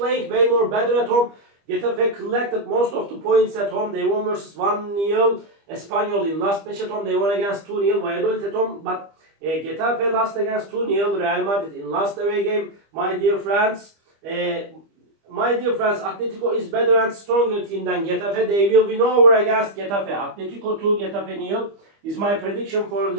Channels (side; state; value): left; late; 25 ms